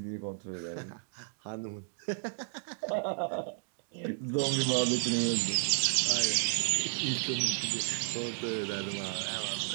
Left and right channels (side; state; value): left; silent; digital silence